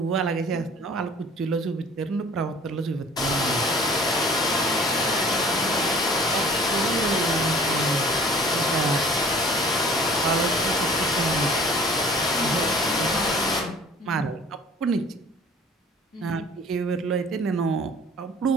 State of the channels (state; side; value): normal; both; correlation 0.49